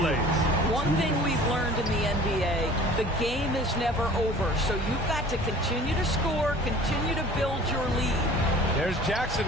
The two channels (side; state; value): both; normal; correlation 0.47